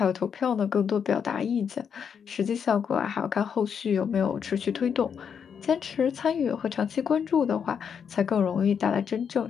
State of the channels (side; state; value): right; quieter; 7.2 dB